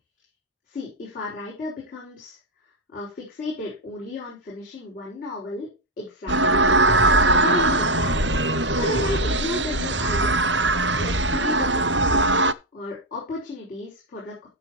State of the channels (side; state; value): both; normal; correlation 0.03